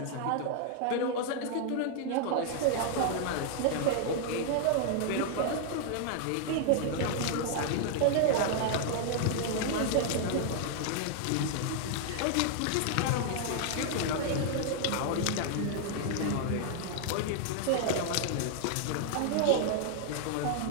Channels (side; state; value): both; different; correlation 0.00